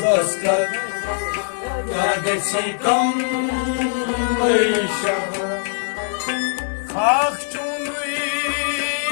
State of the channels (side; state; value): right; silent; digital silence